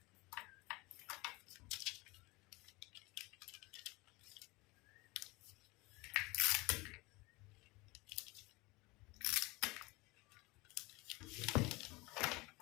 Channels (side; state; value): right; quieter; 23.8 dB